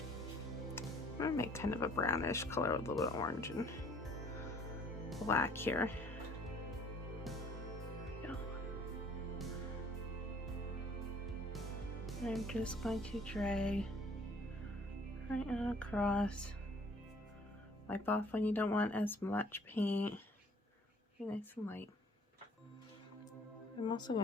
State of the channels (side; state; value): both; normal; correlation 0.57